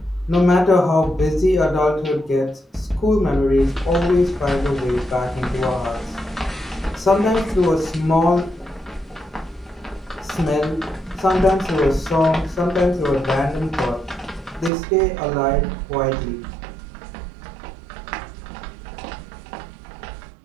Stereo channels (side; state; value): left; drops out; at 14.7 s